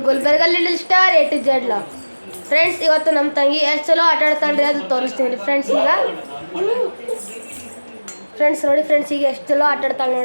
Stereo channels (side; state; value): both; inverted; correlation -1.00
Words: Gulbarga little star A to Z log. Friends, ಇವತ್ತು ನಮ್ಮ ತಂಗಿ ಎಷ್ಟು ಚಲೋ ಆಟ ಆಡ್ತಾಳ್ರಿ ಅದು ತೋರಿಸ್ತೀನಿ ಫ್ರೆಂಡ್ಸ್. ಈಗ ಫ್ರೆಂಡ್ಸ್ ನೋಡಿ, ಫ್ರೆಂಡ್ಸ್ ಈಗ ಎಷ್ಟು ಚಲೋ ಆಟ ಆಡ್ತಾಳೆ